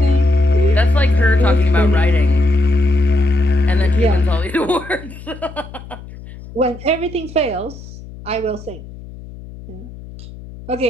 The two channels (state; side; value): noise; left; hum, 16 dB below the sound